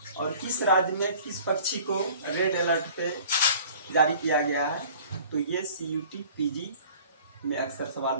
और किस राज्य में किस पक्षी को रेड अलर्ट पे जारी किया गया है। तो ये CUT PG में अक्सर सवाल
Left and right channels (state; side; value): inverted; both; correlation -0.48